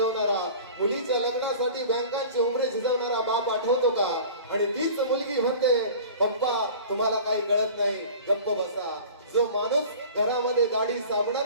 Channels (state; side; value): inverted; both; correlation -0.41